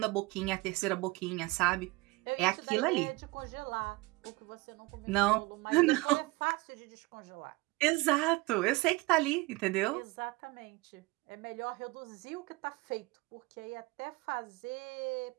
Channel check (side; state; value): left; quieter; 22.7 dB